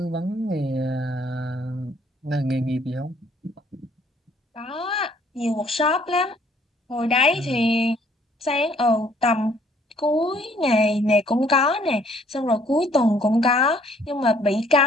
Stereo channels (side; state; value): both; normal; correlation 0.62